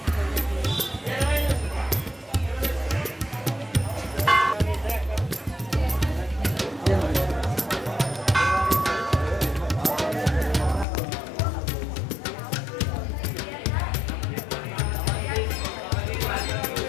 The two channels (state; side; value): drops out; right; at 10.9 s